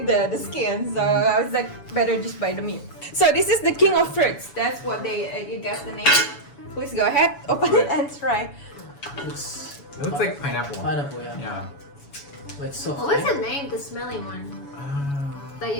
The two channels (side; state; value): right; late; 7.1 ms